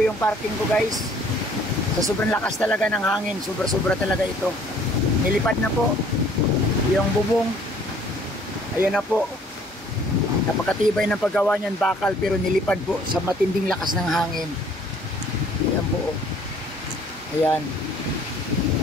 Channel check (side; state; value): both; normal; correlation 0.57